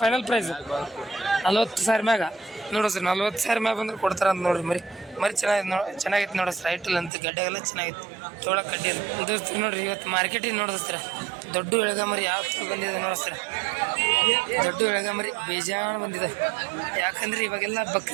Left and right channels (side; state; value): left; drops out; at 7.1 s